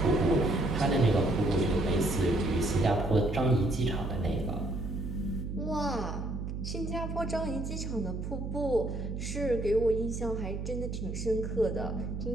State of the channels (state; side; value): noise; right; hum, 5 dB below the sound